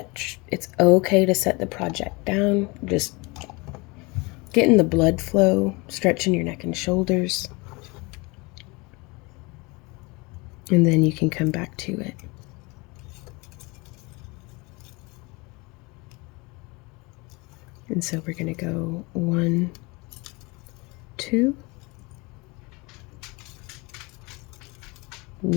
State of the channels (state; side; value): quieter; right; 26.3 dB